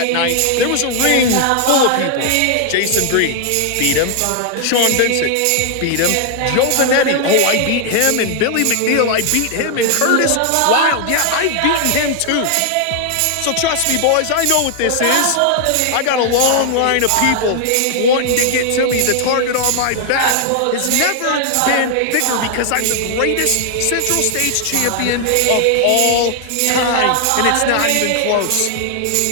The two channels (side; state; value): both; different; correlation 0.00